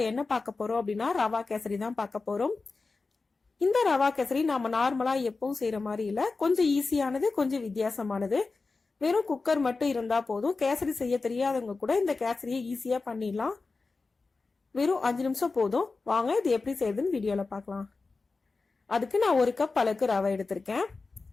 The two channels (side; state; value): right; quieter; 4.0 dB